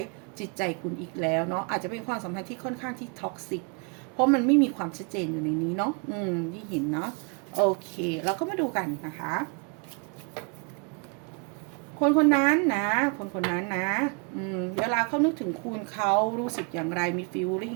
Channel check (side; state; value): left; quieter; 34.7 dB